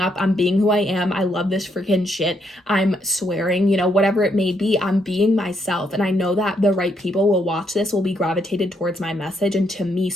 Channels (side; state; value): both; normal; correlation 0.75